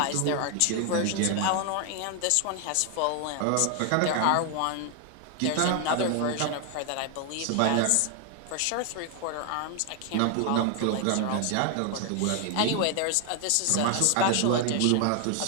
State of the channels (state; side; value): different; both; correlation 0.00